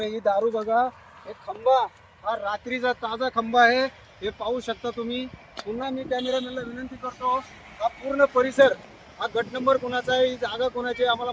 ही दारू बघा. एक खंबा, हा रात्रीचा ताजा खंबा आहे. हे पाहू शकता तुम्ही. पुन्हा मी कॅमेरामॅनला विनंती करतो, हा पूर्ण परिसर, हा गट नंबर कोणाचा आहे, ही जागा कोणाची आहे आम्हाला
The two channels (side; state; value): both; identical; correlation 1.00